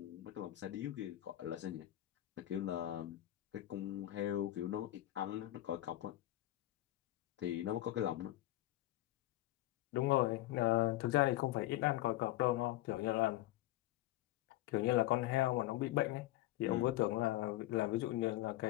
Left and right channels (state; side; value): quieter; right; 15.7 dB